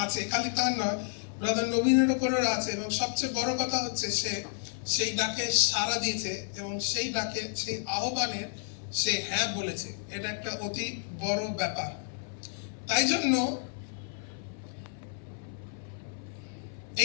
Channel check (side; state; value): right; silent; 57 dB below the other